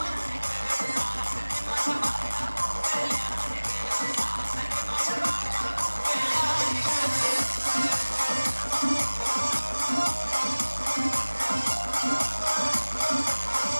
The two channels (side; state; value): both; inverted; correlation -1.00